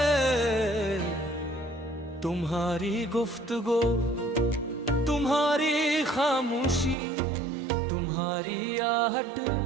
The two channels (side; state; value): left; drops out; at 7.0 s